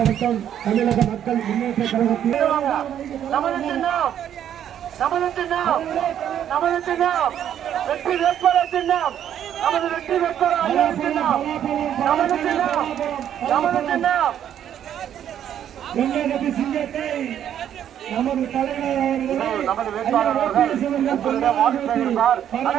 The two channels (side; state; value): left; quieter; 10.0 dB